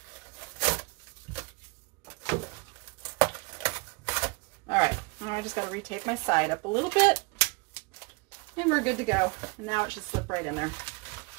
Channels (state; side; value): quieter; left; 29.3 dB